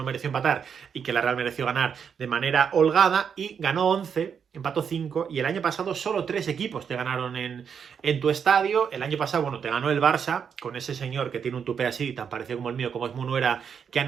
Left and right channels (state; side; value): quieter; left; 7.1 dB